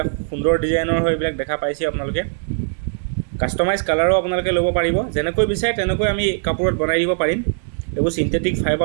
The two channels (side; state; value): left; silent; 66 dB below the other